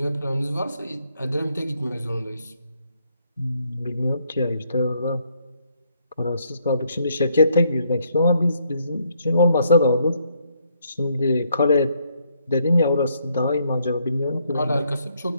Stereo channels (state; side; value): inverted; both; correlation -0.72